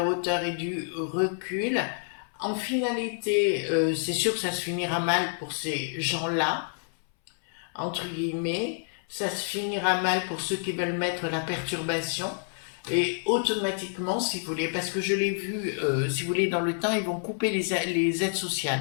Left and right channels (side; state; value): right; silent; 59 dB below the other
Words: hauteur et du recul. En finalité, c'est sûr que ça se finira mal pour ces gens-là, entre guillemets. Ça se finira mal pour ceux qui veulent mettre la perturbation. Et automatiquement, si vous voulez, parce que je l'ai vu, si vous voulez, dans le temps, ils vont couper les aides